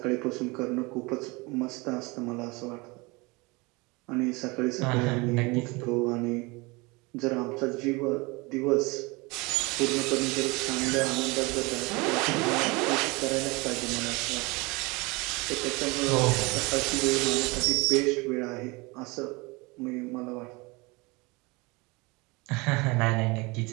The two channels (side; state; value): left; quieter; 25.7 dB